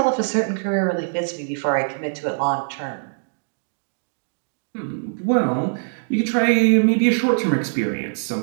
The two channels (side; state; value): left; silent; digital silence